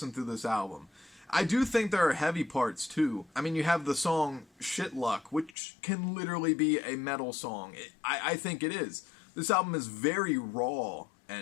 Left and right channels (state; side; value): drops out; right; at 5.6 s